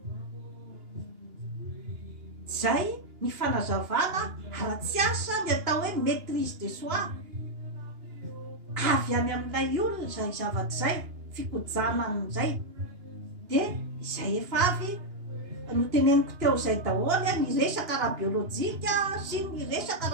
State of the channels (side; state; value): left; late; 2.8 ms